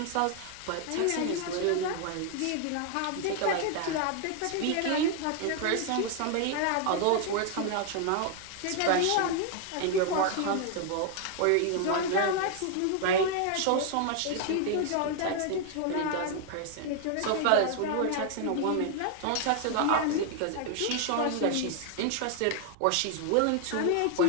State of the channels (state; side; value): different; both; correlation 0.00